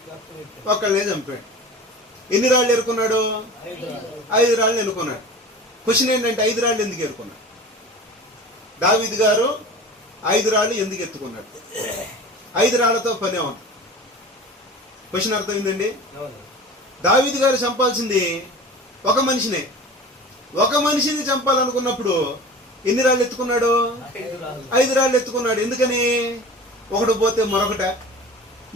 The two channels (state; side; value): normal; both; correlation 0.37